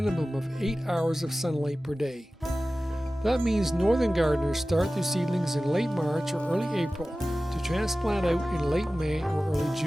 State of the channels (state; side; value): normal; both; correlation 0.96